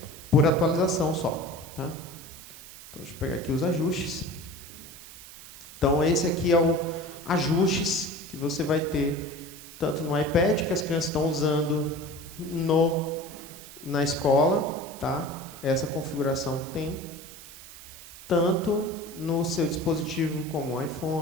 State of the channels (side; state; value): right; noise; hiss, 16 dB below the sound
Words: por atualização só. Tá? Então, deixa eu pegar aqui os ajustes. Então, esse aqui é o ajustes que você vai ter tanto no iPad, que as crianças estão usando na escola, tá? Essa configuração tem, tanto no seu dispositivo como o